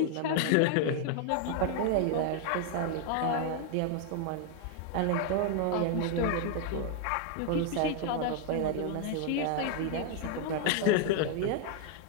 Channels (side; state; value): both; different; correlation 0.00